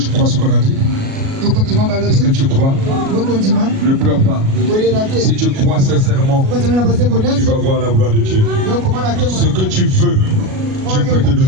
crois ce qu'on a dit? Est-ce que tu crois? Ne pleure pas. Si tu crois sincèrement, tu vas voir la gloire de Dieu. Ce que tu veux, Dieu peut te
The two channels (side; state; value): left; late; 37 ms